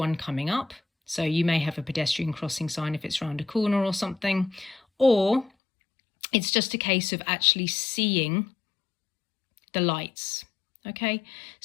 coming up. So you may have a pedestrian crossing sign if it's around a corner or something, or it's just a case of actually seeing the lights. Okay,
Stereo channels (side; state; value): right; drops out; at 5.5 s